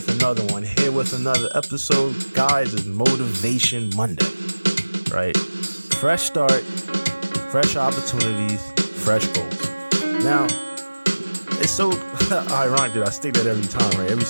another one. Here with another episode. Guys, it's Motivation Monday, right? Fresh start, fresh opportunities, fresh goals. Now, it's so ironic that I state that every time, right? Every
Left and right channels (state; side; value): inverted; both; correlation -1.00